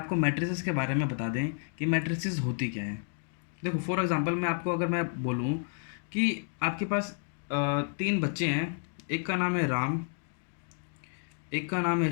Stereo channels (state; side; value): silent; right; 57 dB below the other